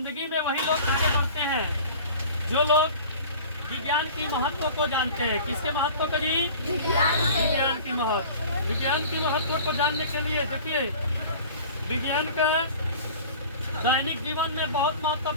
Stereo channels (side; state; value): both; inverted; correlation -0.42